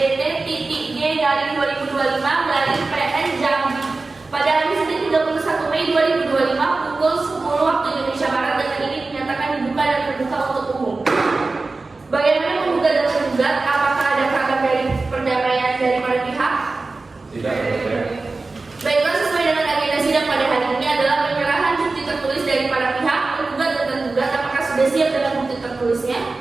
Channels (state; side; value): quieter; left; 3.6 dB